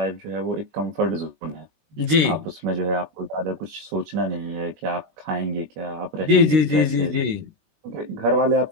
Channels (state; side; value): late; left; 19 ms